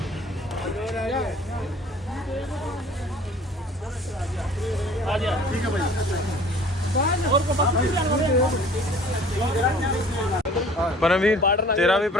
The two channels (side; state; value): both; normal; correlation 0.50